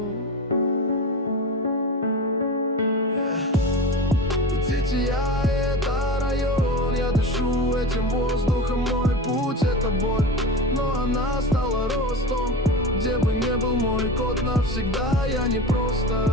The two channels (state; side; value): normal; both; correlation 0.27